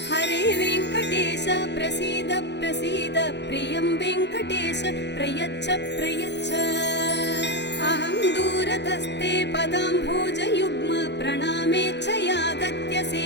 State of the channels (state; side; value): late; right; 0.50 ms